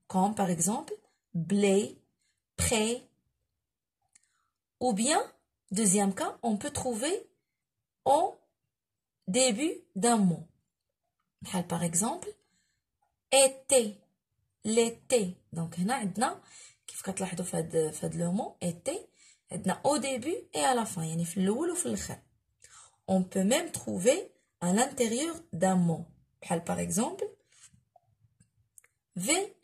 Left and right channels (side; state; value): both; identical; correlation 1.00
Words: comme par exemple blé, prêt. Ou bien, deuxième cas, on peut trouver au début d'un mot. Par exemple, été, l'été. Donc, هنا عندنا كيف كتلاحظوا في هاد لو مو été عندنا au début et à la fin يعني في الأول وفي الآخر. On peut même trouver à l'intérieur d'un mot. Par exemple,